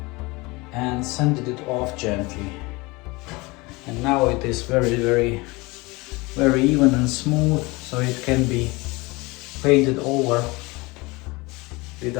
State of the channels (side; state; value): right; quieter; 24.1 dB